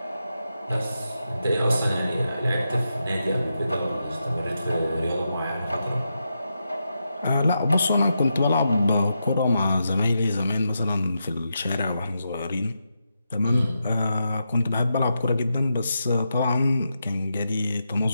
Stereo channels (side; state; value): both; inverted; correlation -0.86